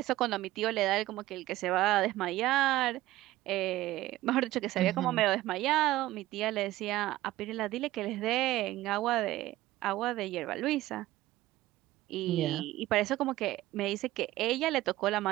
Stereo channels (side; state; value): left; quieter; 16.3 dB